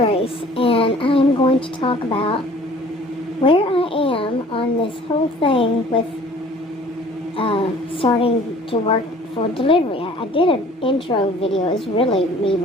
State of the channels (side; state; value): both; normal; correlation 0.51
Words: and I'm going to talk about where I am on this whole thing with starting to work for delivery. I did an intro video. It's really me